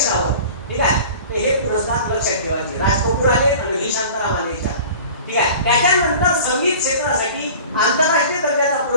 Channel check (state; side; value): inverted; both; correlation -0.42